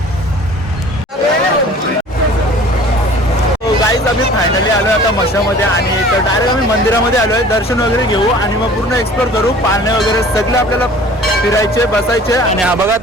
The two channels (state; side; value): normal; both; correlation 0.48